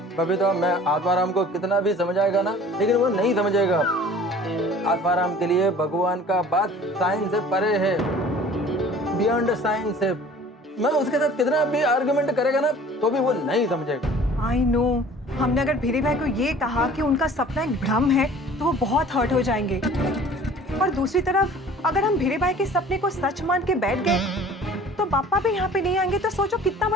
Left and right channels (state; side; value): normal; both; correlation 0.48